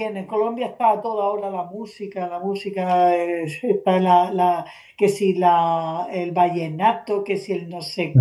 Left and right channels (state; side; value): identical; both; correlation 1.00